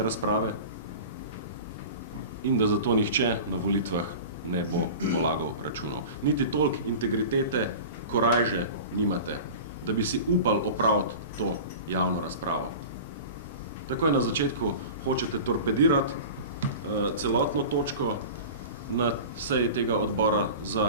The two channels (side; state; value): both; inverted; correlation -0.35